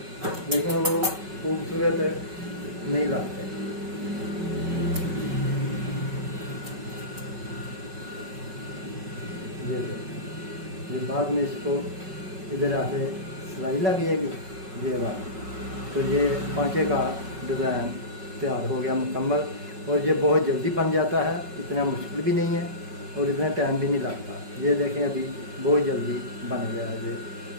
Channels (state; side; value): late; left; 5.3 ms